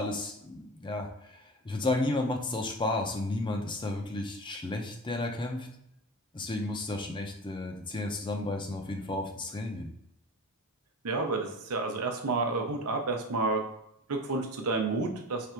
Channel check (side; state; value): both; normal; correlation 0.32